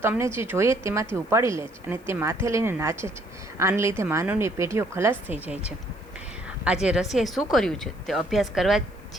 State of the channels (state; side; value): noise; left; hiss, 30 dB below the sound